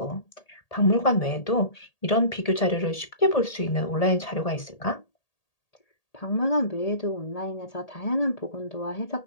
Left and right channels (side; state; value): right; late; 1.8 ms